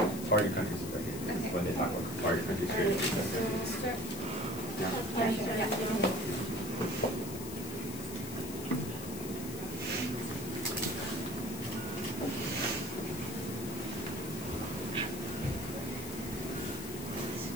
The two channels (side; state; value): left; noise; hiss, 10 dB below the sound